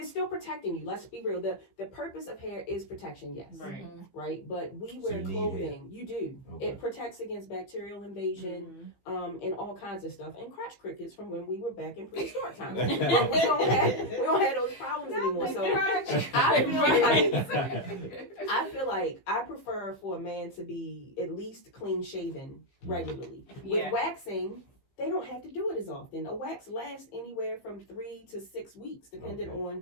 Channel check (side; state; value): right; late; 15 ms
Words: still protecting you. Let's be real. The purpose of hair is protection, yes. Right. Mhm. Right? But we So wear you need clothing. You do. Okay. It protects against bacterial invasion, and all kinds of stuff. And crotch crickets from when we were back in prehistoric times. But we don't have those problems anymore. So I feel like I prefer for a man to be at least clean shaven regularly. Yeah. With waxing, they don't have to do it as often. A wax lasts anywhere from 3 to 6 weeks, depending Okay.